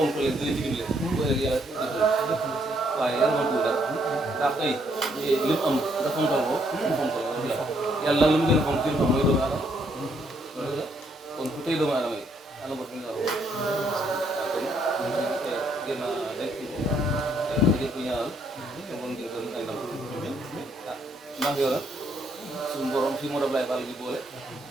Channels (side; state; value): both; normal; correlation 0.71